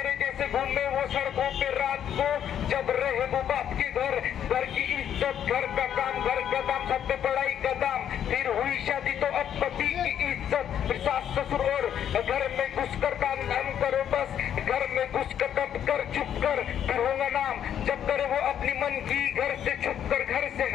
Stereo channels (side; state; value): right; quieter; 9.6 dB